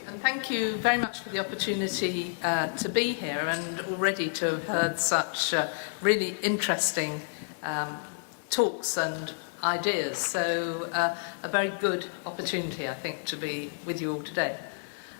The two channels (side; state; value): right; silent; digital silence